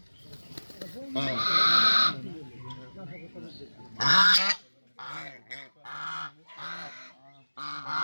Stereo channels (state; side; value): inverted; both; correlation -1.00